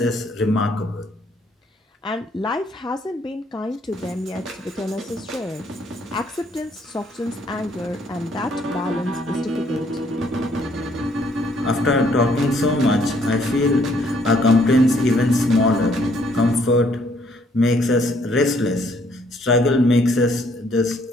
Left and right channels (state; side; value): normal; both; correlation 0.66